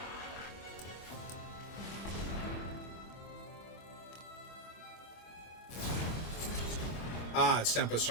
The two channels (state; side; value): late; right; 25 ms